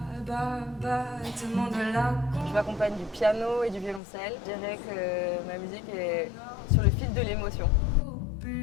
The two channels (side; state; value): right; drops out; at 4.0 s